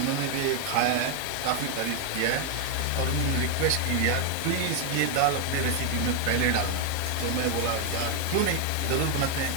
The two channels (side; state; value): both; different; correlation 0.00